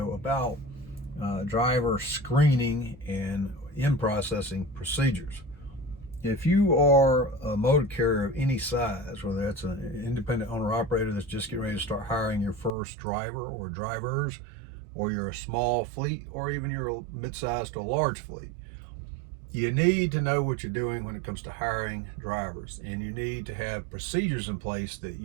about driver screening and in-processing procedures. If you are a motor carrier of any size, whether that's an independent owner-operator that's just getting ready to start hiring your first driver or drivers, or you're a small fleet, or even you're a mid-sized to a large fleet, you need to know what you're doing when it comes to hiring drivers, and you need to have procedures in place that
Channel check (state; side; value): drops out; left; at 12.7 s